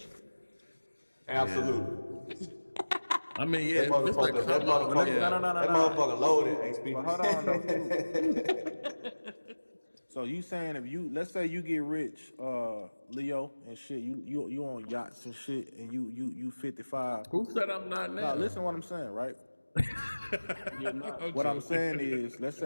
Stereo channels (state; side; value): inverted; both; correlation -1.00